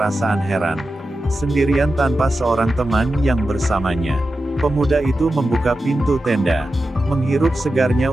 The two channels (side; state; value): both; normal; correlation 0.91